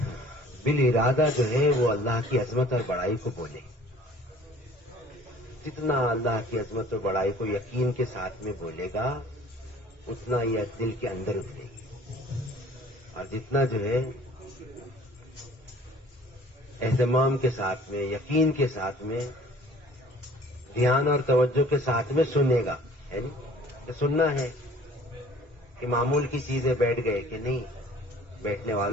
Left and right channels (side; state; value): both; normal; correlation 0.51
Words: بالارادہ جو ہے وہ اللہ کی عظمت اور بڑائی کو بولے. جتنا اللہ کی عظمت اور بڑائی کو یقین کے ساتھ میں بولے گا اتنا یہ دل کے اندر اترے گی. اور جتنا جو ہے اہتمام کے ساتھ میں، یقین کے ساتھ میں، دھیان اور توجہ کے ساتھ میں سنے گا. ہے نہیں کہ سننا ہے کہ معمول کی چیزیں بیٹھ گئے کہ نہیں. بیٹھنے